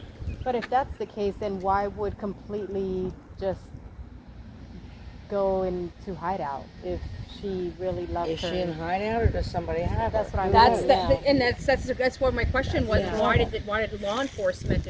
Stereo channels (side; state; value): both; identical; correlation 1.00